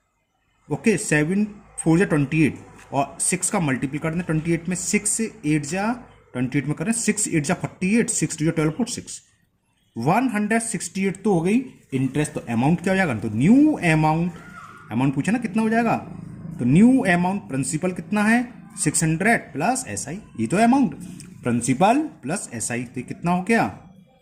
ओके 7 4 जा 28 और 6 का मल्टीपल कर दें 28 में, 6 से 8 जा 28 में करें, 6 8 जा 48, 6 2 जा 12 4 6, 168 तो हो गई इंटरेस्ट। तो अमाउंट क्या हो जाएगा, तो न्यू अमाउंट, अमाउंट पूछा ना कितना हो जाएगा, तो न्यू अमाउंट प्रिंसिपल कितना है 600 प्लस एसआई, ये तो अमाउंट प्रिंसिपल प्लस एसआई, तो कितना हो गया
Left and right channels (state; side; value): identical; both; correlation 1.00